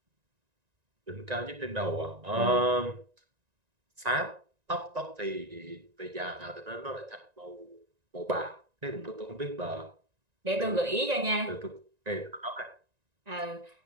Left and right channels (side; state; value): left; late; 1.9 ms